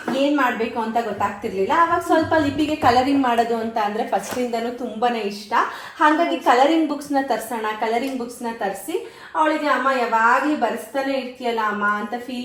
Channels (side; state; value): both; identical; correlation 1.00